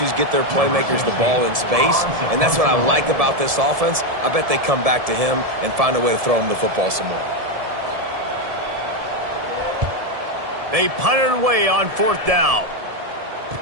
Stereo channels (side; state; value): left; late; 1.7 ms